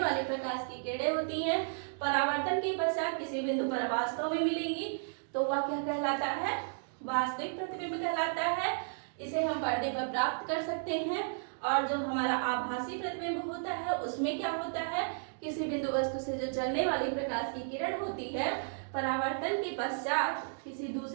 वाली प्रकाश की किरणें होती हैं परावर्तन के पश्चात किसी बिंदु पर वास्तव में मिलेंगी, तो वह क्या कहलाता है, वास्तविक प्रतिबिंब कहलाता है। इसे हम पर्दे पर प्राप्त कर सकते हैं। और जो हमारा आभासी प्रतिबिंब होता है उसमें क्या होता है, किसी बिंदु वस्तु से जो चलने वाली प्रकाश की किरण होती है परावर्तन के पश्चात किसी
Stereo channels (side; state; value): left; silent; digital silence